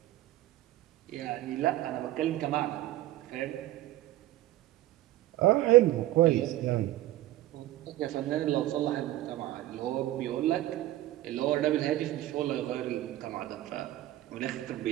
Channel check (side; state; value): left; quieter; 15.6 dB